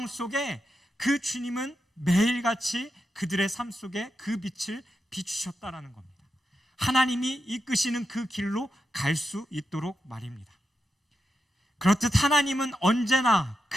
속에 그 주님은 매일같이 그들의 삶 속에 그 빛을 비추셨다라는 겁니다. 하나님이 이끄시는 그 길로 갈 수 있도록 말입니다. 그렇듯 하나님은 언제나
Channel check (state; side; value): normal; both; correlation 0.87